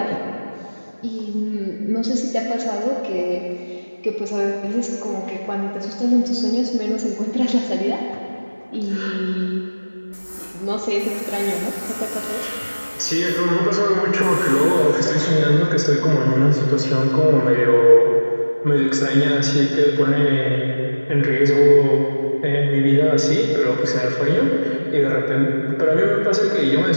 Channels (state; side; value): inverted; both; correlation -1.00